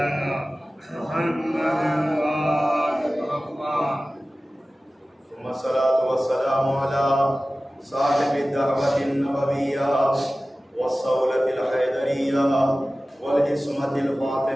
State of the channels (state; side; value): normal; both; correlation 0.97